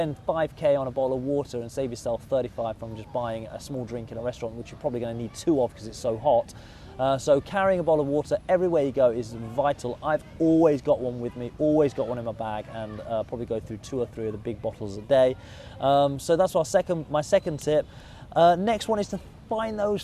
5k on a bottle of water and save yourself 35 from just buying a small drink in a restaurant, which you're probably going to need 2 of because it's so hot. So carrying a bottle of water everywhere you go is vital. I've always got one with me, always got one in my bag, and probably go through 2 or 3 of the big bottles a day. So that's my second tip. Next one is to find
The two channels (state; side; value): identical; both; correlation 1.00